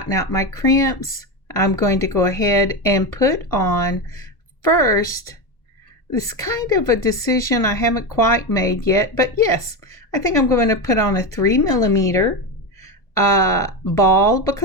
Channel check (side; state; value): right; late; 1.0 ms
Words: out my crimps, I'm going to go ahead and put on first. This kind of a decision I haven't quite made yet, but yes, I think I'm going to put on a 3mm ball